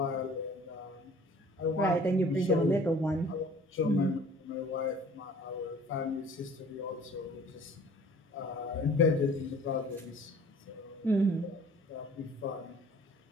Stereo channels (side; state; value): both; normal; correlation 0.50